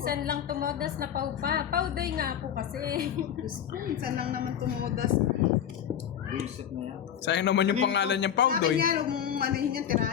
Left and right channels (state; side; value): quieter; right; 9.3 dB